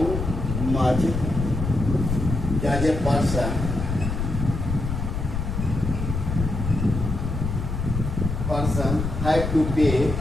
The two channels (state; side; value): noise; left; rumble, 3 dB below the sound